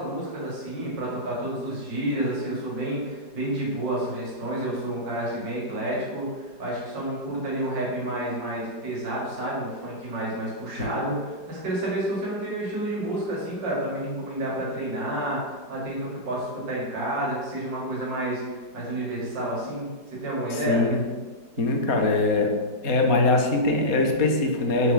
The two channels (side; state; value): left; late; 4.9 ms